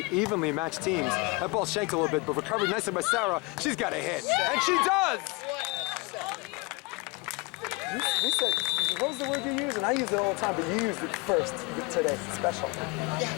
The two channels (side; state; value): right; quieter; 26.3 dB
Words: evenly matched teams. That ball shanked a little bit, but recovered nicely by Sara. She's got a hit, and she does! You said, what was the word you used? And I use it all the time, but you used it first today. Special.